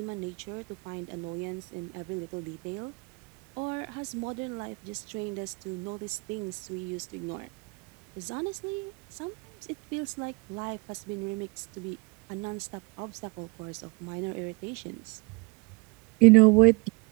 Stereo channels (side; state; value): left; quieter; 28.7 dB